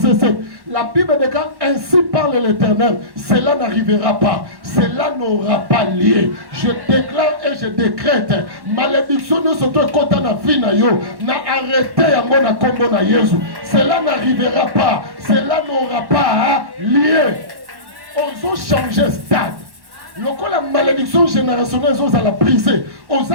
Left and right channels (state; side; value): late; left; 1.1 ms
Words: 7. La Bible de ainsi parle l'Éternel. Cela n'arrivera pas. Cela n'aura pas lieu. Je déclare et je décrète. Malédiction ne se trouve quand on a vu na yo. Na arrêté à mon combo na Jésus. Cela n'arrivera pas. Cela n'aura pas lieu. On a changé stade. Lorsque la malédiction générationnelle est à la briser, on